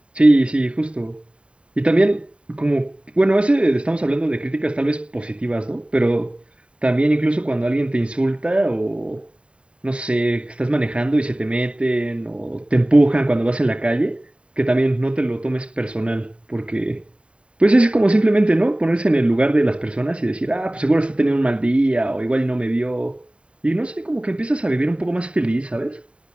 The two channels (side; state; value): left; late; 0.057 ms